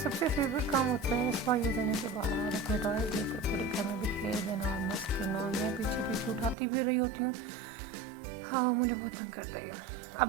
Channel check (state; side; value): drops out; left; at 6.6 s